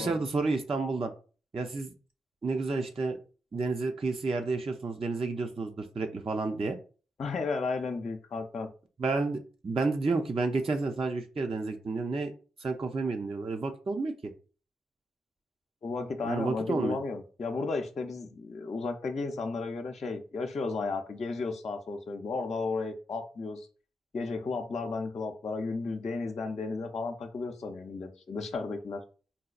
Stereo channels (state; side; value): normal; both; correlation 0.82